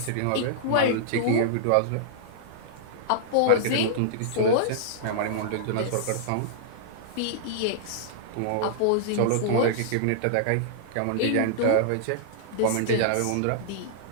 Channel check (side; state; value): both; different; correlation -0.02